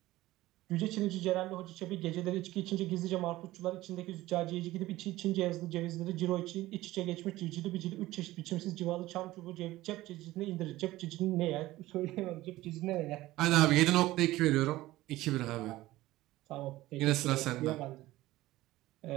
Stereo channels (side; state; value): left; quieter; 17.2 dB